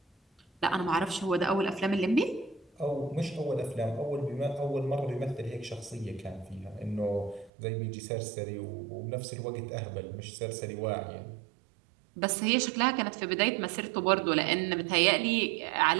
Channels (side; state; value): left; drops out; at 7.5 s